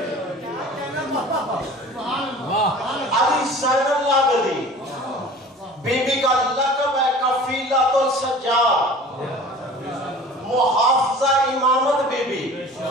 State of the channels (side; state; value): both; normal; correlation 0.43